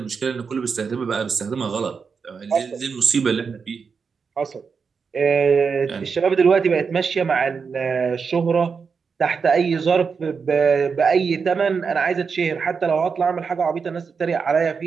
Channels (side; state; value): left; quieter; 5.6 dB